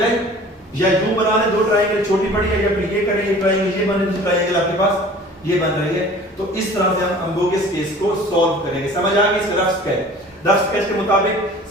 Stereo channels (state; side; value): normal; both; correlation 0.45